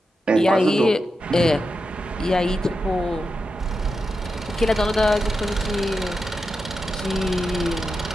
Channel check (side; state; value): both; normal; correlation 0.88